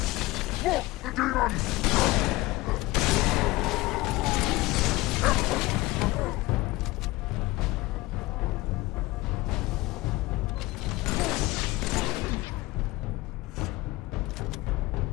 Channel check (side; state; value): right; quieter; 20.1 dB